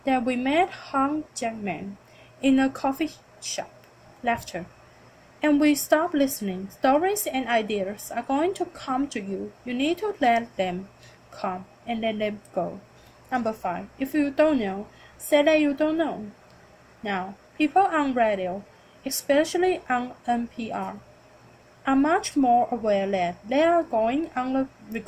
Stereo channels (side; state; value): both; identical; correlation 1.00